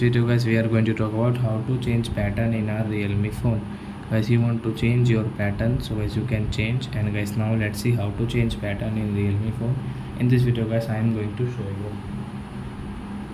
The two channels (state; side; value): identical; both; correlation 1.00